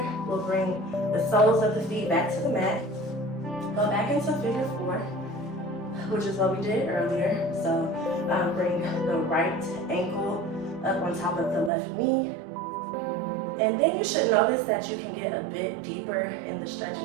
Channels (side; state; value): left; drops out; at 11.7 s